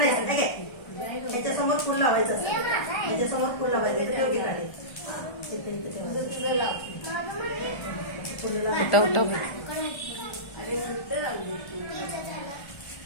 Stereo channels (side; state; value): right; late; 1.3 ms